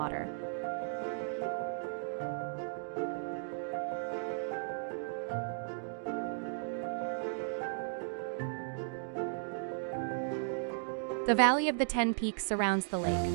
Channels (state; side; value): silent; left; digital silence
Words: The Valley of the Ten Peaks surrounds the lake,